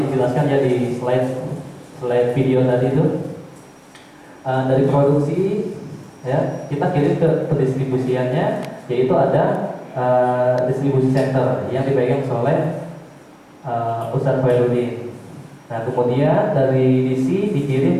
ya di slide video tadi itu dari produksi ya kita kirim ke pendistribusiannya, yaitu ada distribusi center yang dipegang oleh Ustadz Khairuddin. Nah, kemudian dari DC dikirim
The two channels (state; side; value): identical; both; correlation 1.00